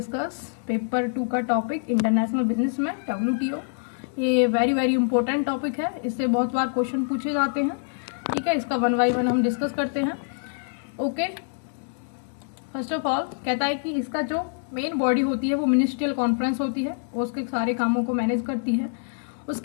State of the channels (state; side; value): silent; right; digital silence